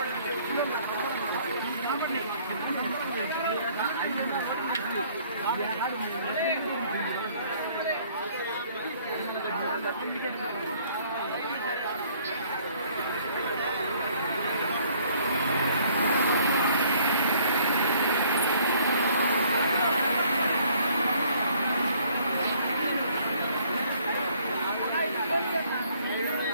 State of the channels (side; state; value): both; inverted; correlation -0.61